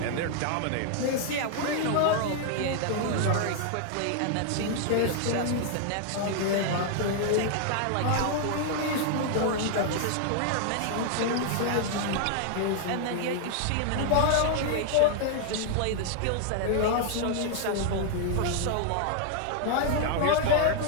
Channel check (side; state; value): both; different; correlation 0.00